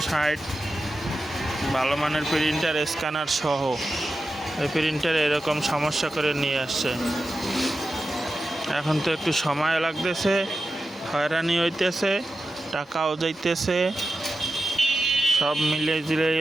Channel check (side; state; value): both; normal; correlation 0.91